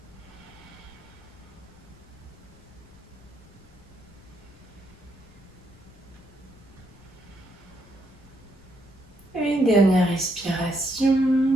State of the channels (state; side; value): noise; left; rumble, 24 dB below the sound